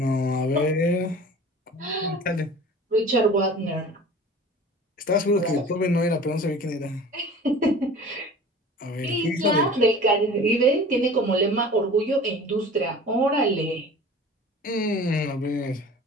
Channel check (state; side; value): normal; both; correlation 0.41